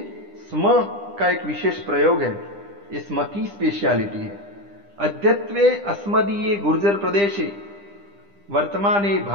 स्म का एक विशेष प्रयोग है, ये स्म की स्पेशलिटी है। अद्यत्वे अस्मदीये गुर्जर प्रदेशे वर्तमाने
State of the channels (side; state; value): left; late; 10 ms